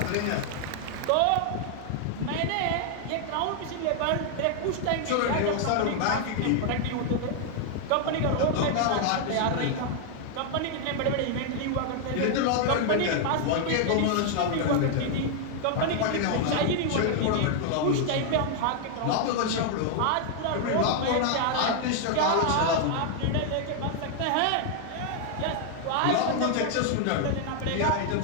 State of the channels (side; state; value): both; different; correlation 0.00